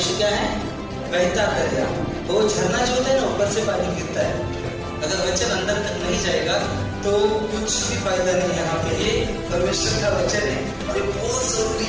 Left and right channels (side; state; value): both; identical; correlation 1.00